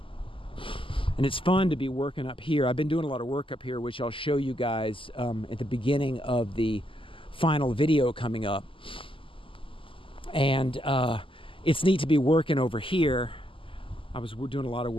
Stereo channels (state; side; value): late; right; 0.25 ms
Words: And it's fun to be working up here. I've been doing a lot of work up here, which I'll show you guys at the beginning of the final video coming up. And it's neat to be working over here. I was doing a lot of